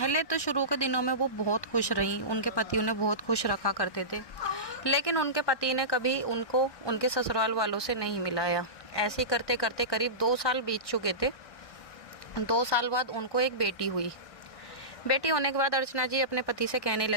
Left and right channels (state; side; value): late; right; 1.6 ms